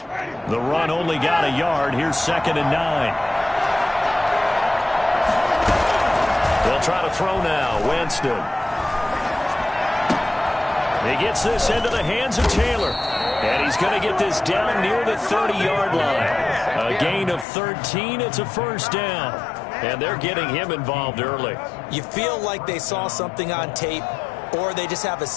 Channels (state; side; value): drops out; right; at 17.4 s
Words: The run only got a yard. Here's 2nd and 9. They'll try to throw now. Winston. He gets this into the hands of Taylor. And he's going to get this down near the 30-yard line. A gain of 13. It's a first down. And they're getting him involved early. You feel like they saw something on tape, or they just have a